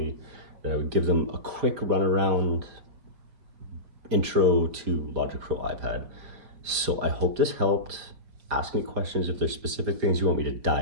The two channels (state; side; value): late; left; 5.0 ms